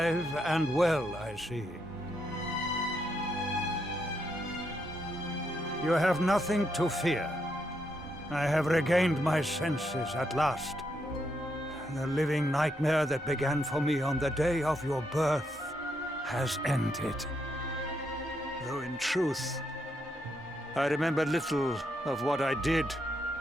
and well, I see. You have nothing to fear. I have regained my senses at last. The living nightmare that began for me on the day of your birth has ended. Though in truth, I remember little of what I did.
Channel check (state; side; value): normal; both; correlation 0.79